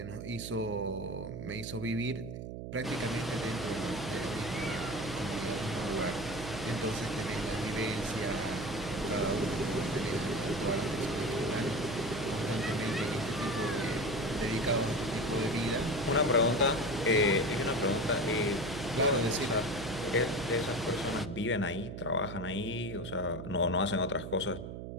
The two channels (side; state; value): right; noise; hum, 8 dB below the sound